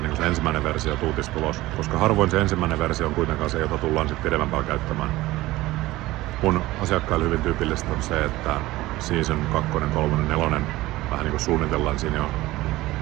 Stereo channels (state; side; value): quieter; left; 17.9 dB